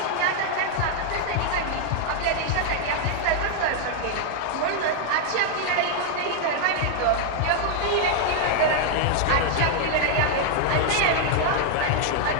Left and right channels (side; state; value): both; different; correlation 0.00